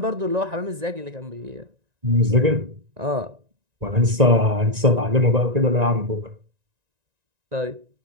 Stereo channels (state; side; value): late; left; 1.9 ms